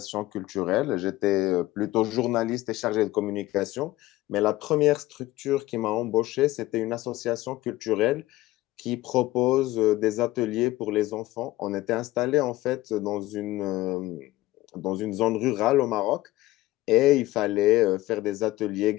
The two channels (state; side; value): quieter; right; 17.4 dB